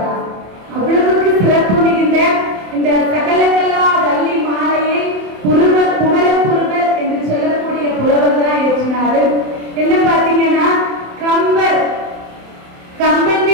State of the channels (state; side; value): late; left; 27 ms